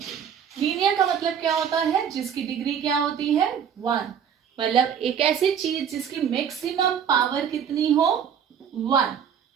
लीनियर का मतलब क्या होता है, जिसकी डिग्री क्या होती है, 1। मतलब एक ऐसी चीज जिसकी मैक्सिमम पावर कितनी हो, 1।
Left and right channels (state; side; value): quieter; left; 8.1 dB